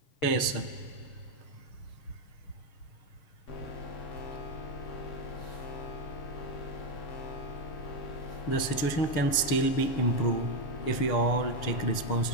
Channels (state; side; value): late; right; 6.6 ms